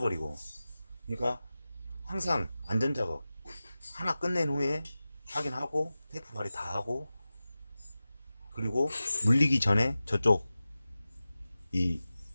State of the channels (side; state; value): both; inverted; correlation -0.95